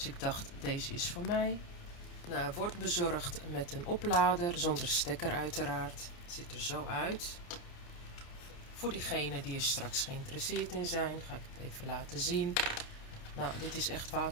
ik dacht deze is voor mij. Nou, hij wordt bezorgd met een oplader, zonder stekker uiteraard. Het ziet er zo uit. Voor diegenen die er straks geïnteresseerd in zijn, ga ik het even laten zien. Nou, dit is echt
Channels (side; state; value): right; late; 29 ms